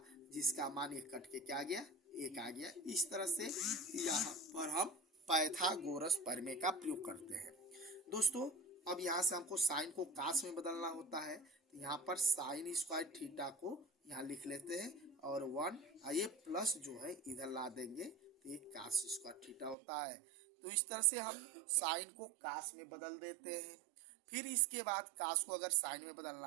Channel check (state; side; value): drops out; left; at 19.8 s